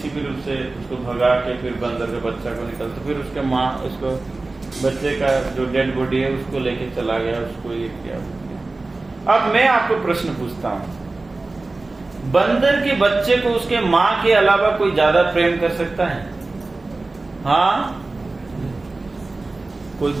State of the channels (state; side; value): quieter; left; 3.3 dB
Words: भी रूप से उसको भगा के फिर बंदर के बच्चा को निकलते, फिर उसके माँ उसको बच्चे का जो डेड बॉडी है उसको लेके चला गया, उसको ये किया। अब मैं आपको प्रश्न पूछता हूँ, बंदर के बच्चे को उसके माँ के अलावा कोई ज्यादा प्रेम कर सकता है? हाँ, कोई